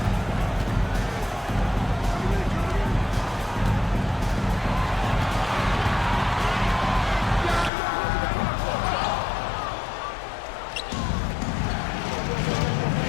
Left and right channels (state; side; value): drops out; right; at 7.7 s